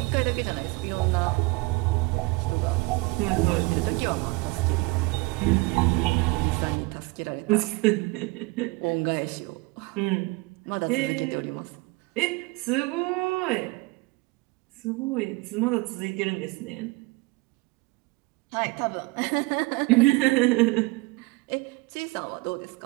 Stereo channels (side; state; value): left; quieter; 24.5 dB